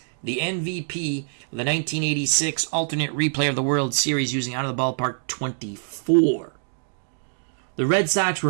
the MVP of the 1986 alternate replay of the World Series using Out of the Ballpark 24. The Red Sox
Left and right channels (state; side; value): silent; left; digital silence